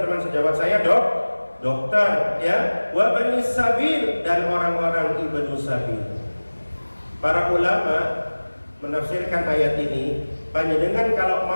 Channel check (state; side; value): inverted; both; correlation -1.00